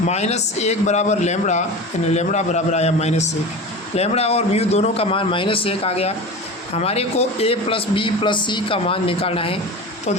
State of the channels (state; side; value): normal; both; correlation 0.30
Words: बराबर लेमड़ा, यानी लेमड़ा बराबर आया -1। लेमड़ा और म्यू दोनों का मान -1 आ गया। हमारे को ए प्लस बी प्लस सी का मान निकालना है। तो